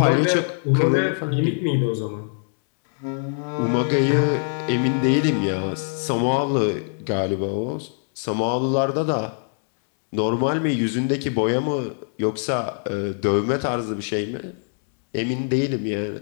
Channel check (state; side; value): silent; right; digital silence